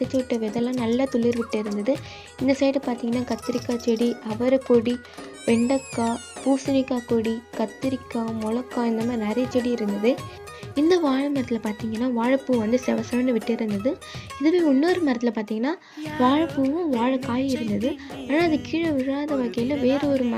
விட்ட விதைலாம் நல்லா துளிர் விட்டு இருந்தது. இந்த சைடு பார்த்திங்கன்னா கத்திரிக்காய் செடி, அவரைக்கொடி, வெண்டைக்காய், பூசணிக்காய் கொடி, கத்திரிக்காய், மிளகாய் இந்த மாதிரி நிறைய செடி இருந்தது. இந்த வாழை மரத்தில் பார்த்திங்கன்னா வாழைப்பூ வந்து செவன்னு விட்டு இருந்தது. இதுவே இன்னொரு மரத்தில் பார்த்திங்கன்னா வாழைப்பூவும் வாழைக்காயும் இருந்தது. ஆனால் அது கீழே விழாத வகையில் வேறு ஒரு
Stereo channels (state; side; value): identical; both; correlation 1.00